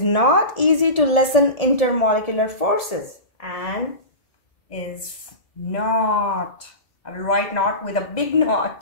not easy to lessen intermolecular forces, and is not, I will write not with a big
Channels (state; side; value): late; right; 1.7 ms